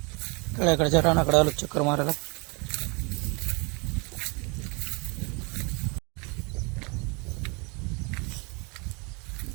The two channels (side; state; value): left; quieter; 31.2 dB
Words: तळ्याकडच्या रानाकडे आलो चक्कर मारायला.